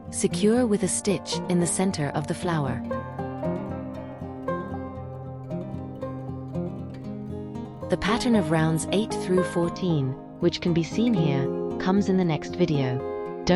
Secure with a stitch in the center of the flower. The pattern of rounds 8 through 14, which can be seen here, comes in the next video.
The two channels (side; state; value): both; identical; correlation 1.00